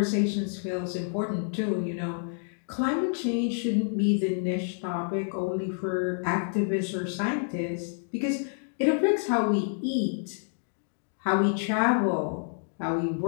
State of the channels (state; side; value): silent; right; digital silence